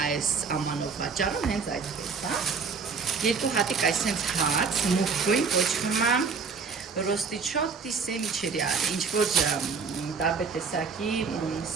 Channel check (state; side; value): quieter; left; 5.1 dB